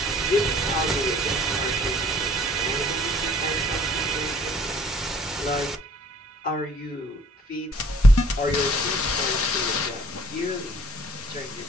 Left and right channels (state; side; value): normal; both; correlation 0.56